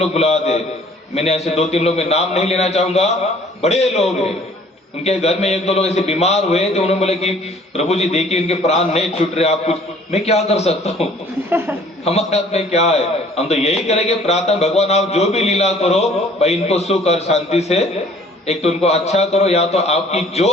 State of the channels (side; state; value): both; normal; correlation 0.55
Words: बुला दे, मैंने ऐसे 2-3 लोग, मैं नाम नहीं लेना चाहूंगा, बड़े लोग हैं, उनके घर में 1-2 लोग ऐसे बीमार हुए तो उन्होंने बोले कि प्रभु जी देखिए इनके प्राण नहीं छूट रहे, आप कुछ। मैं क्या कर सकता हूँ? हमारे हाथ में क्या है? हम तो यही करेंगे प्रार्थना, भगवान आप जो भी लीला करो भाई इनको सुख और शांति से, एक तो उनको अच्छा करो, या तो आपकी जो